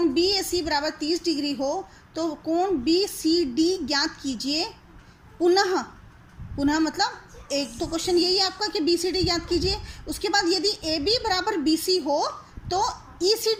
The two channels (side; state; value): both; identical; correlation 1.00